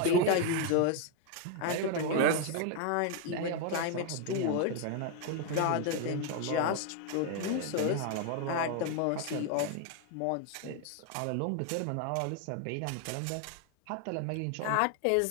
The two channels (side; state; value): both; different; correlation 0.01